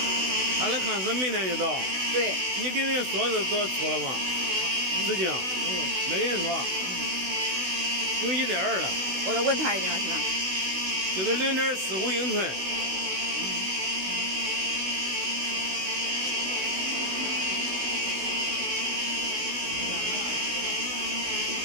他的看是明天就到。对。你给人说是多出了吗？事情没跟人说。有1.2了。我再问他一下是吧？就是0.45英寸。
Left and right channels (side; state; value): left; late; 16 ms